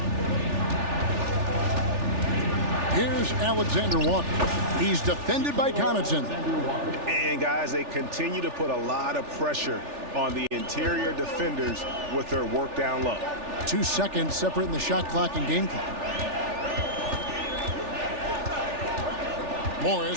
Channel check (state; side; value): late; left; 3.4 ms